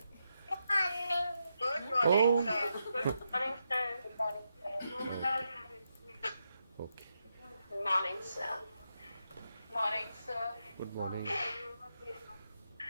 Oh, okay. Morning, sir. Morning, sir. Good morning.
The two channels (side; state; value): both; inverted; correlation -0.84